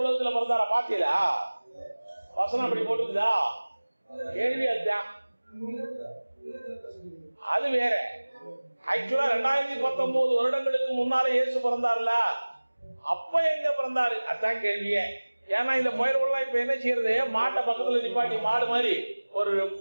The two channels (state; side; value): inverted; both; correlation -1.00